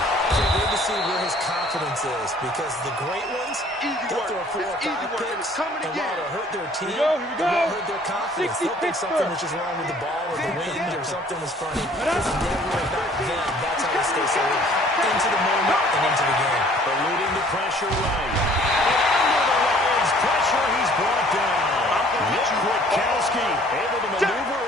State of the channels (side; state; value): both; normal; correlation 0.55